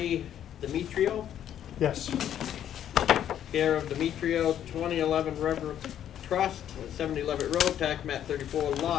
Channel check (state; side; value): quieter; right; 10.4 dB